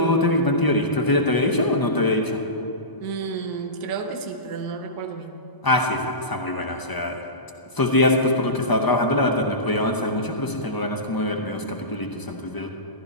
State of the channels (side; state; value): right; late; 1.0 ms